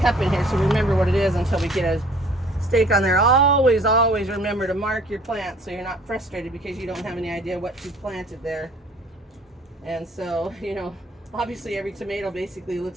cup in here so remember what it is until we get a stake on there. Always remember to mark your plants so you're not frustrated because you don't have any idea what you planted there. And so, you know, obviously every tomato basically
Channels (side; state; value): both; normal; correlation 0.54